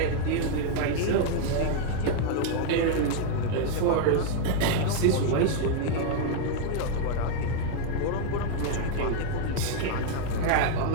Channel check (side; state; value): both; different; correlation 0.00